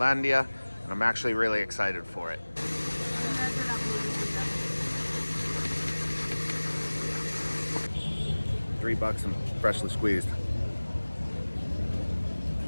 and I'm actually really excited for it. $3 and freshly squeezed.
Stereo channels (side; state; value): both; inverted; correlation -1.00